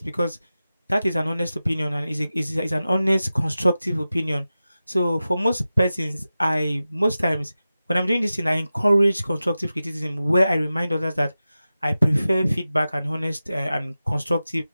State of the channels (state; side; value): inverted; both; correlation -0.94